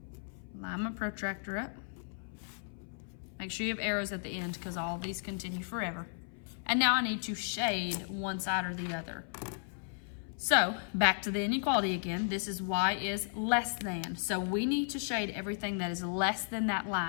Line my protractor up. Make sure you have arrows at the end because all of these continue forever. And now I need to shade one side or the other. So back to the inequality again. This is y is less than. So we need to shade everything that is less than that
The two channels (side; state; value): right; silent; 55 dB below the other